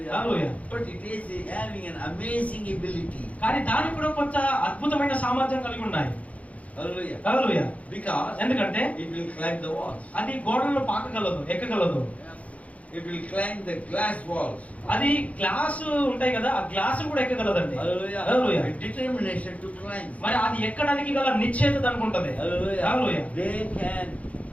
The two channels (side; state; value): right; late; 0.067 ms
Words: Hallelujah. But it is having an amazing ability. కానీ దానికి కూడా కొంత అద్భుతమైన సామర్థ్యం కలిగి ఉన్నాయి. Hallelujah. Hallelujah. Because ఎందుకంటే it will climb the walls. అది గోడలను పాకగలదు, ఎక్కగలదు. It will climb the glass walls. అది గ్లాస్ ఉంటాయి కదా, ఆ గ్లాస్ కూడా ఎక్కగలదండి. Hallelujah. Hallelujah. A determination to climb. మరి అది ఎక్కడానికి గల నిశ్చయత దానికి ఉంటది. Hallelujah. Hallelujah. They can